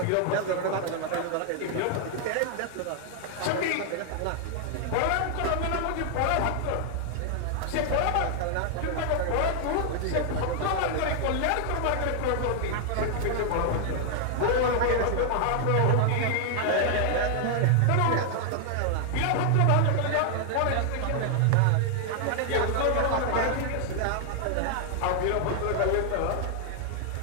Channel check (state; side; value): different; both; correlation 0.00